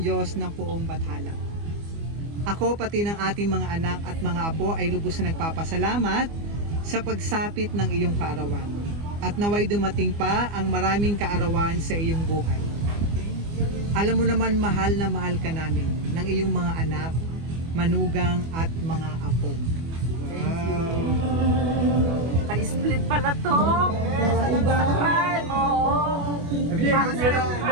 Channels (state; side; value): late; left; 24 ms